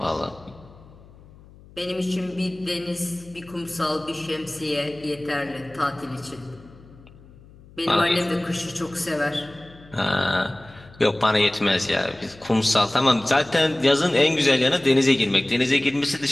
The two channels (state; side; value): noise; left; hum, 23 dB below the sound